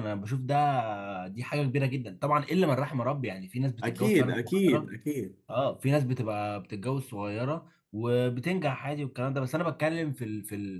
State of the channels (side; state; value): both; identical; correlation 1.00